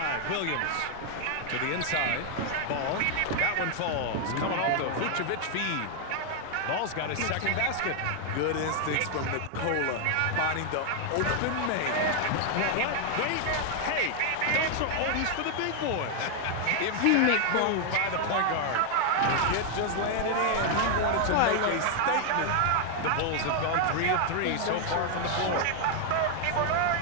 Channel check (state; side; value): different; both; correlation 0.00